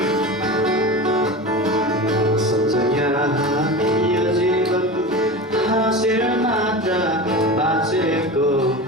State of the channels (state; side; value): normal; both; correlation 0.28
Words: हाँसेर मात्र बाँचेको